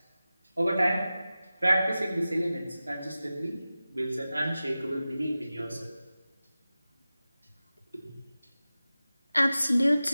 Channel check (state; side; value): inverted; both; correlation -0.95